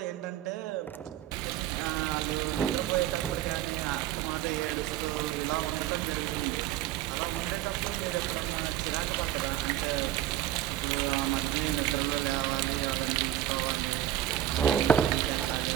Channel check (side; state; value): left; quieter; 12.5 dB